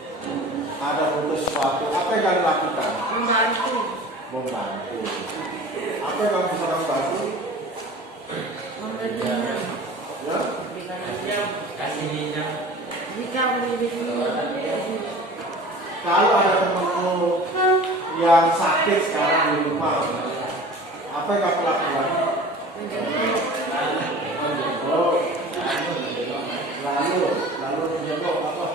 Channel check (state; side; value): normal; both; correlation 0.41